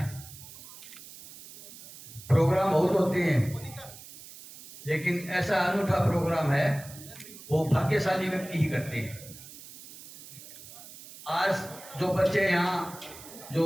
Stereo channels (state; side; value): noise; right; hiss, 17 dB below the sound